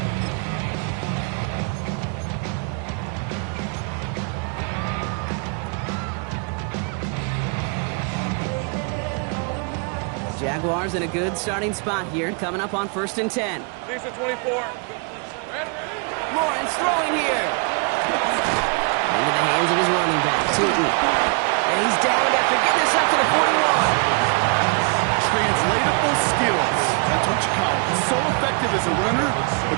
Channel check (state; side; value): quieter; left; 36.3 dB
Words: Jaguars in a good starting spot here, coming up on 1st and 10. These are 24. Lawrence throwing here. Into the hands of his running back, Tootin. And he's down after getting this up to the 41. Translatable skills. That's what you call it. So effective as a runner,